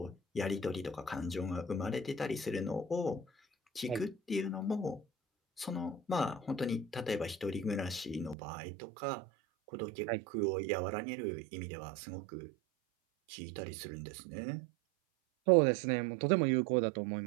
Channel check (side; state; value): left; drops out; at 8.3 s